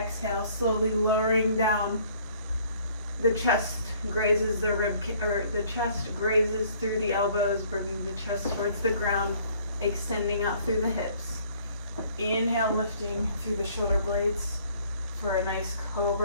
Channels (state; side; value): inverted; both; correlation -0.59